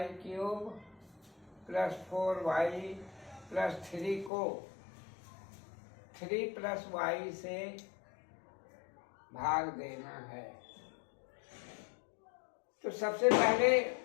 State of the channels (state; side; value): drops out; right; at 4.3 s